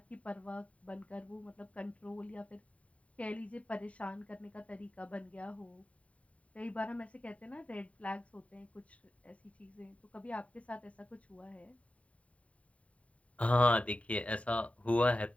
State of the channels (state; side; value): late; right; 0.066 ms